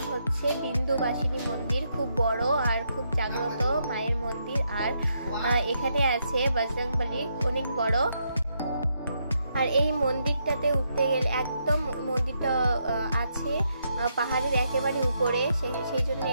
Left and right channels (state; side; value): inverted; both; correlation -0.78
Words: হচ্ছে বিন্দুবাসিনী মন্দির। খুব বড় আর খুব জাগ্রত মায়ের মন্দির। আর এখানে আছে বজরংবলী, অনেক বড়। আর এই মন্দিরটাতে উঠতে গেলে একদম মন্দিরটা আছে পাহাড়ের একেবারে উপরে, সেই জন্য